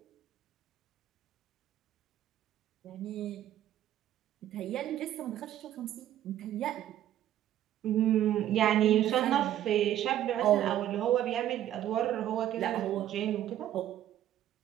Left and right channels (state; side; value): quieter; left; 12.0 dB